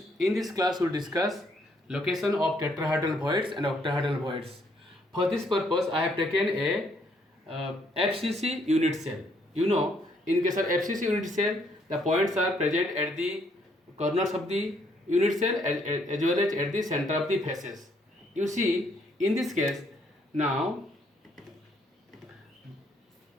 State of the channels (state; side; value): normal; both; correlation 0.69